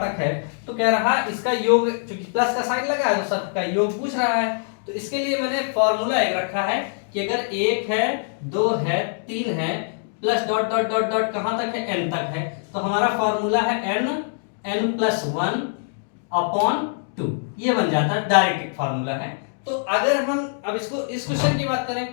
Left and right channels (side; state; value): right; silent; digital silence